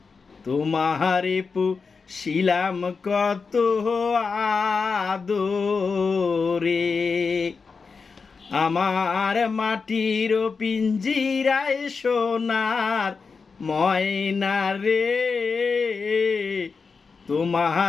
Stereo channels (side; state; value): right; quieter; 4.9 dB